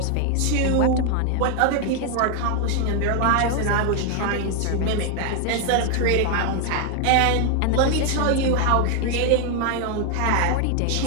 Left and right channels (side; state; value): both; different; correlation 0.01